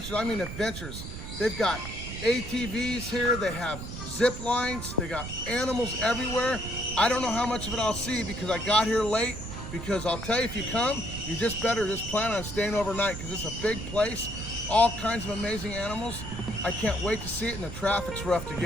I mean adventures. They've got ATVs here, they have zip lines, they got animals everywhere. I don't know how much of it I'll see because I got here late. Because I'll tell you, if you come, you just better just plan on staying overnight because it's a big place. All kinds of amazing animals. I can't wait to see it, and the traffic's rough to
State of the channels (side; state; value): right; noise; rumble, 9 dB below the sound